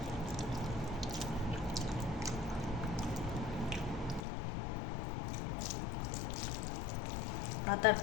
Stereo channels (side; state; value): right; drops out; at 4.2 s